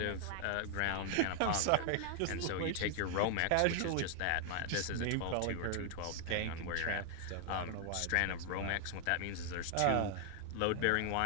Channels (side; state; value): both; different; correlation 0.00